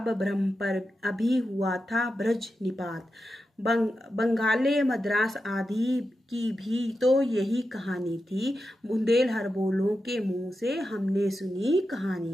ब्रह्म पर अभी हुआ था ब्रज निपात। बंगाले मद्रास आदि की भी तो यही कहानी थी, बुंदेल हरबोलों के मुंह से हमने सुनी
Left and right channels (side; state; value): both; normal; correlation 0.89